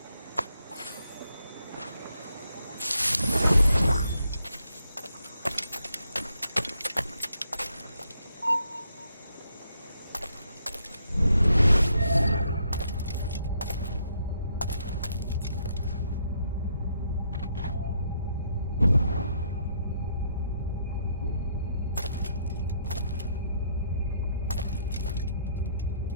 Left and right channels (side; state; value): both; inverted; correlation -0.74